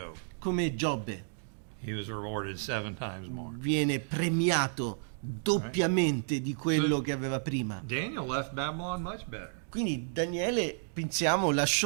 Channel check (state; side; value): silent; left; digital silence